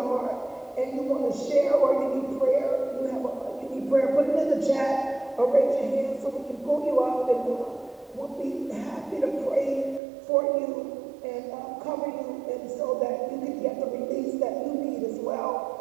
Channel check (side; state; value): left; drops out; at 10.0 s